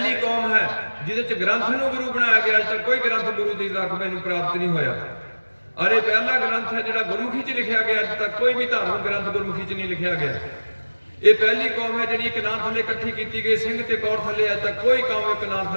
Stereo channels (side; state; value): both; inverted; correlation -1.00